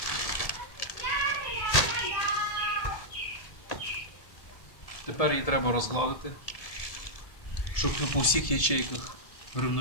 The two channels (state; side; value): late; right; 1.7 ms